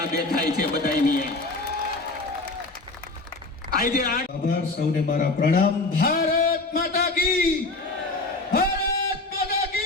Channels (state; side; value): quieter; right; 3.2 dB